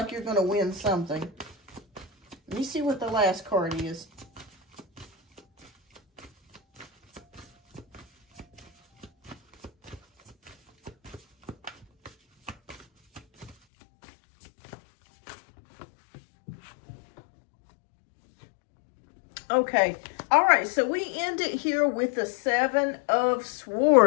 you're going to win something. Let me see what the last card is. Okay. All right. So we ended here with the 7 of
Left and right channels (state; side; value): drops out; right; at 13.6 s